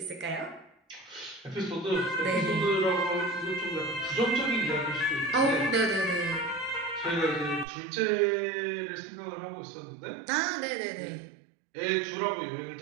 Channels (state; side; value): drops out; left; at 7.7 s